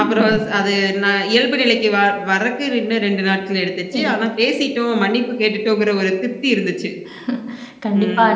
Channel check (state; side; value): identical; both; correlation 1.00